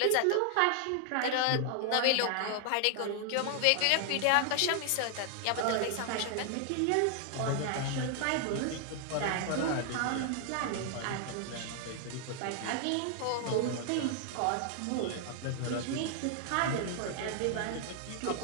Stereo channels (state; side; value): different; both; correlation 0.00